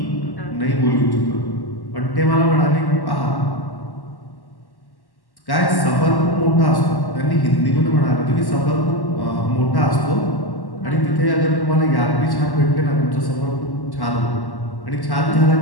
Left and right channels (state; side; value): late; right; 1.1 ms